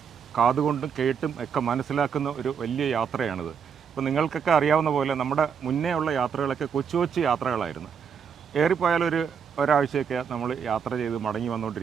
കാതുകൊണ്ടും കേട്ടും ഒക്കെ മനസ്സിലാക്കുന്ന ഒരു വലിയ യാത്രയാണിത്. ഇപ്പോൾ നിങ്ങൾക്കൊക്കെ അറിയാവുന്ന പോലെ നമ്മുടെ മുന്നേ ഉള്ള യാത്രകളൊക്കെ കൊച്ചു കൊച്ചു യാത്രകളായിരുന്നു. ഏറിപ്പോയാലൊരു ഒരാഴ്ചയൊക്കെ നമ്മൾ യാത്ര ചെയ്ത് മടങ്ങി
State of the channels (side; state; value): left; quieter; 6.9 dB